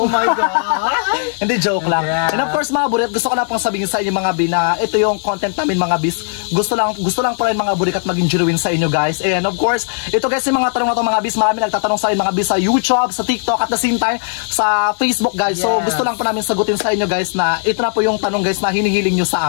my God! Hindi, joke lang. Yeah. And of course mga burikat, gusto ko na pong sabihin sa inyo mga bi na ito yung content namin mga bis. Gusto lang po rin mga burikat maging genuine sa inyo guys. And of course, ito guys yung mga tanong na ito mga bis. Marami nagtatanong sa inyo mga bis sa YouTube, sa TikTok, at the same time sa Facebook guys. So Yes. gusto lang po namin sagutin sa inyo guys na ito na po yung tanong guys na hinihiling nyo sa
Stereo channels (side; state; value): right; silent; digital silence